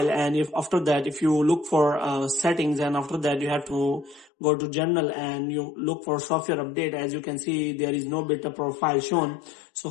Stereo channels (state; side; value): drops out; right; at 4.3 s